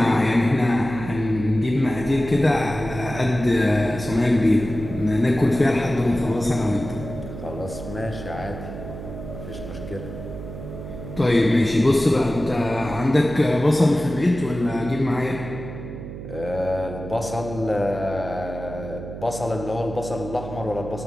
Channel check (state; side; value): noise; right; hum, 10 dB below the sound